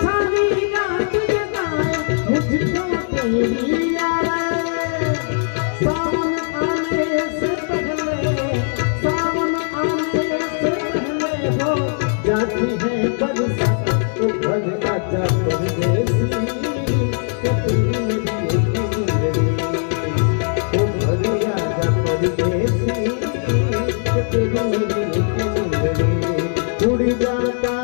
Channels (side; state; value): right; silent; digital silence